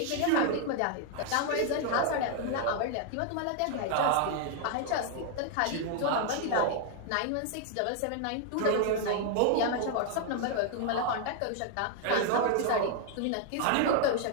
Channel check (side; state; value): both; different; correlation 0.00